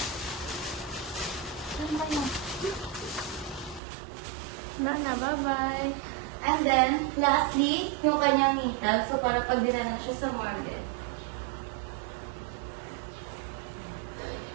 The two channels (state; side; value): drops out; left; at 3.8 s